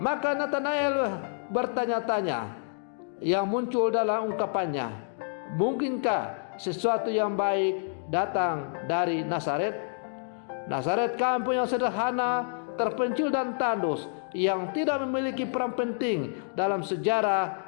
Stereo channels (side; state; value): right; silent; digital silence